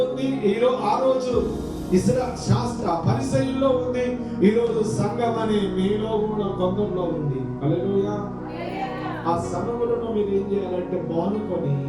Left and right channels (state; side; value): identical; both; correlation 1.00